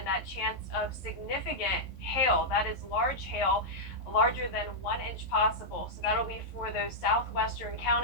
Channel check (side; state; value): right; late; 11 ms